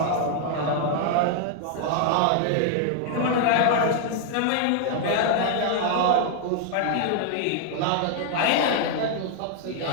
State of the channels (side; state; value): both; different; correlation 0.00